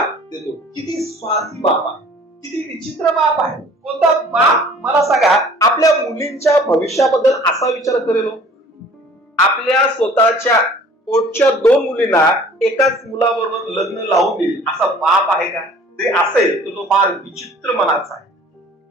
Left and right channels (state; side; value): normal; both; correlation 0.51